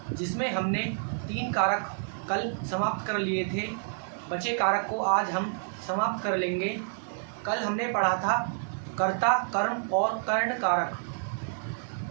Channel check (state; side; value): silent; left; digital silence